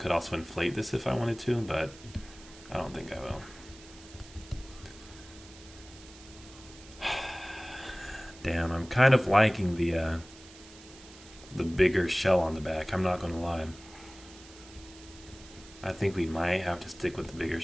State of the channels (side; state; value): right; noise; hiss, 20 dB below the sound